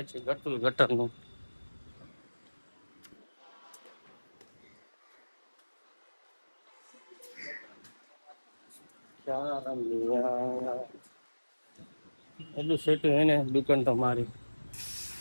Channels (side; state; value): both; inverted; correlation -1.00